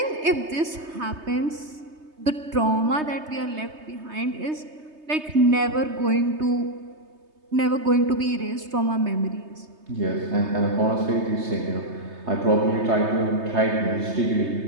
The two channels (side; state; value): left; late; 3.3 ms